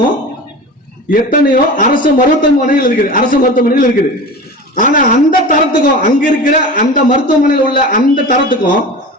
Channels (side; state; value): both; normal; correlation 0.33